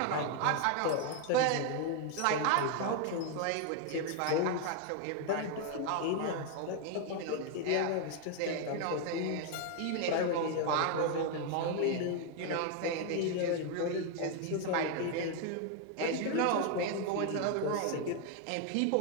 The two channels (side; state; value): both; different; correlation 0.01